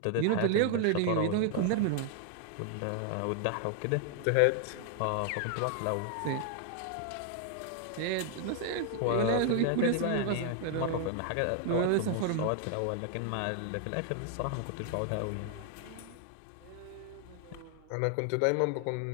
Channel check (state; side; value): different; both; correlation 0.00